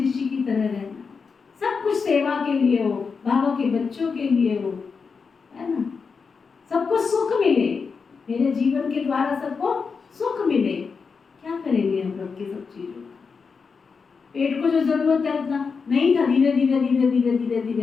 ऋषि की तरह रहना, सब कुछ सेवा के लिए हो, बाबा के बच्चों के लिए हो, है ना, सबको सुख मिले, मेरे जीवन के द्वारा सबको सुख मिले। क्या करेंगे हम रब की सब चीजों का? पेट को जो जरूरत है उतना नहीं था, धीरे धीरे धीरे धीरे धीरे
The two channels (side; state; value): right; quieter; 5.3 dB